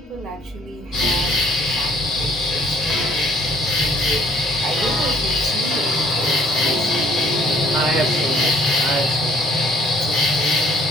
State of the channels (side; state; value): both; normal; correlation 0.59